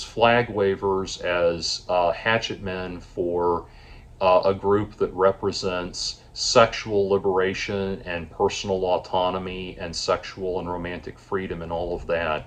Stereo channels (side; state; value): both; identical; correlation 1.00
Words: flag wavers, as hatchet men for a group that represents sexual liberation and personal autonomy and sexual and romantic freedom and all of that.